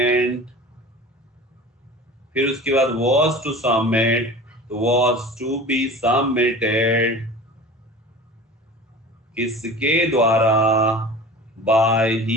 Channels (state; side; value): normal; both; correlation 0.38